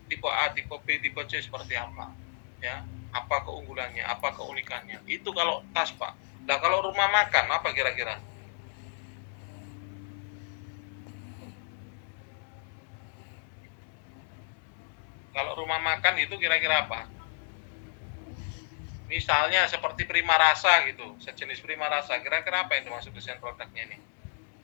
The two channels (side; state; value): right; silent; digital silence